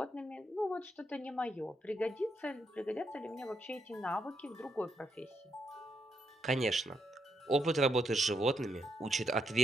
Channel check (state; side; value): normal; both; correlation 0.80